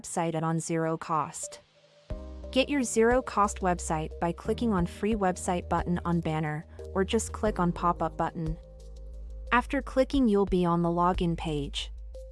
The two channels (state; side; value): identical; both; correlation 1.00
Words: at on zero cost. Get your zero cost website by clicking on free website button on banner or just click on pop-up button. After clicking, you'll be on the login page.